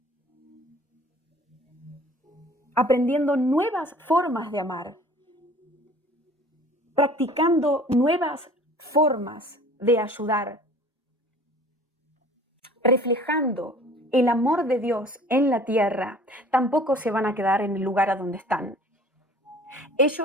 aprendiendo nuevas formas de amar, practicando nuevas formas de ayudar, reflejando el amor de Dios en la tierra, tampoco se van a quedar en el lugar a donde están.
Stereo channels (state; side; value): normal; both; correlation 0.48